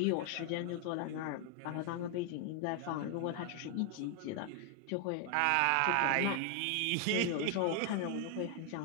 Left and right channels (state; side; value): different; both; correlation 0.00